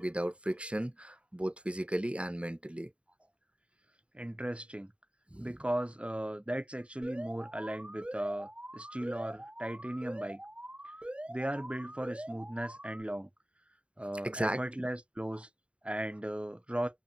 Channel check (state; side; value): late; left; 0.059 ms